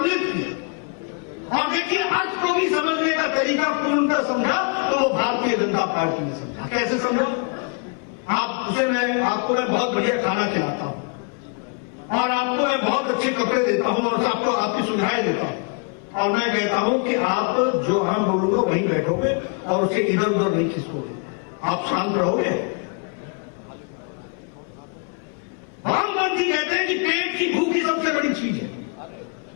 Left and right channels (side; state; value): right; quieter; 33.6 dB